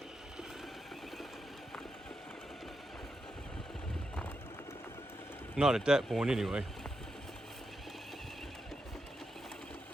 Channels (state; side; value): normal; both; correlation 0.85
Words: Not at that point anyway.